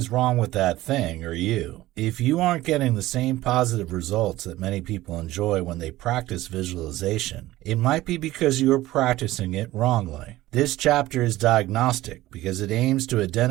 wrong with that thing or you. If you aren't getting the same positive results that many people enjoy when they practice visualization, it might be because you are practicing it wrongly. This chapter is diagnostic because it aims to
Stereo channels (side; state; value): left; quieter; 16.6 dB